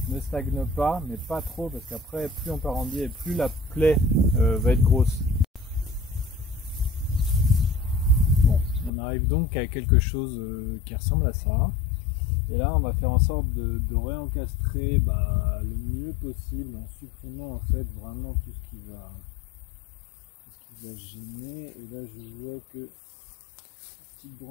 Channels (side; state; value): right; drops out; at 8.9 s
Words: ne stagne pas, mais pas trop, parce qu'après plus on part en biais, plus la plaie va être grosse. Bon, on arrive donc à quelque chose qui ressemble à ça. Et là on va faire en sorte de réencastrer le mieux possible en supprimant en fait vraiment tout ce qui va gêner. Et là je vois que la petite